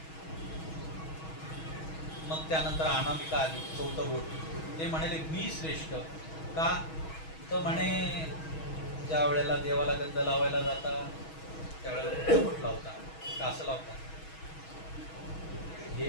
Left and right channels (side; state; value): right; late; 6.2 ms